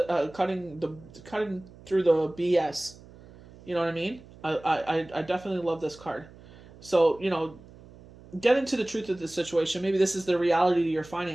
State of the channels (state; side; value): noise; right; hum, 21 dB below the sound